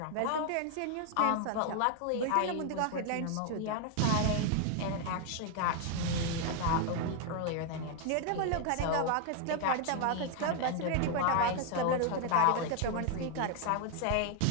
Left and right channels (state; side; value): different; both; correlation 0.00